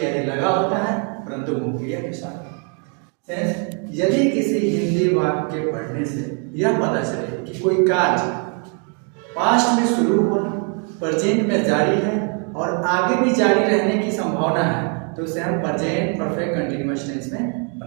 लगा होता है, परंतु मुक्रिया के साथ। सेंस यदि किसी हिंदी वाक्य के पढ़ने से यह पता चले कि कोई कार्य पास्ट में शुरू हुआ, प्रेजेंट में जारी है और आगे भी जारी रहने की संभावना है, तो उसे हम प्रेजेंट परफेक्ट कंटीन्यूअस टेंस में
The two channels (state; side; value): quieter; left; 39.5 dB